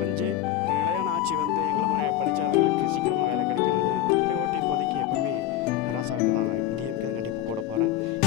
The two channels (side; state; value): right; quieter; 12.4 dB